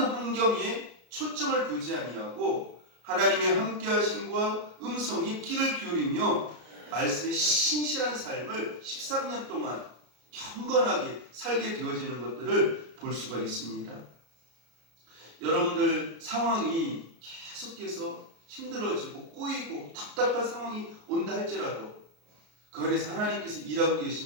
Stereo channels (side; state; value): left; late; 33 ms